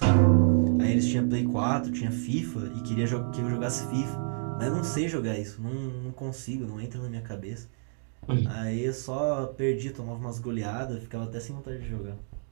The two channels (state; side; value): silent; left; digital silence